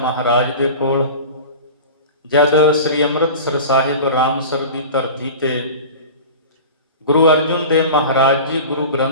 ਦੇ ਕੋਲ, ਜਦ ਸ੍ਰੀ ਅੰਮ੍ਰਿਤਸਰ ਸਾਹਿਬ ਰਾਮਸਰ ਦੀ ਧਰਤੀ ਤੇ ਗੁਰੂ ਅਰਜੁਨ ਦੇਵ ਮਹਾਰਾਜ ਜੀ ਗੁਰੂ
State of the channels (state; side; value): inverted; both; correlation -0.34